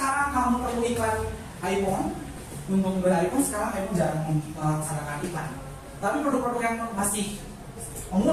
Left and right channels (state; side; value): identical; both; correlation 1.00